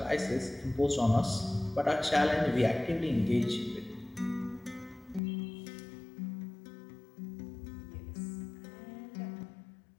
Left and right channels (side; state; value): right; drops out; at 5.2 s